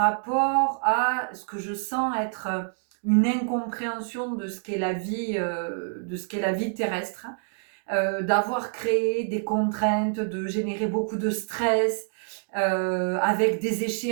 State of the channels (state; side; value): silent; left; 58 dB below the other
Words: à ce que je sens être une incompréhension de ce qu'est la vie terrestre, d'avoir créé des contraintes, de générer beaucoup de stress, avec des